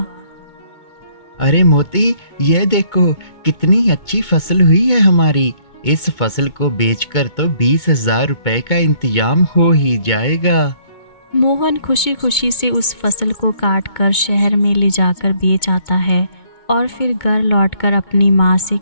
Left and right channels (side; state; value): right; late; 2.2 ms